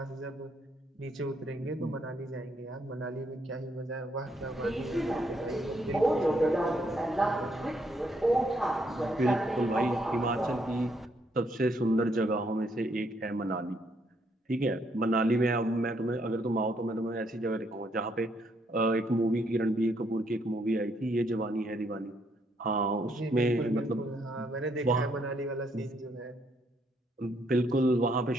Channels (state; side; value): normal; both; correlation 0.73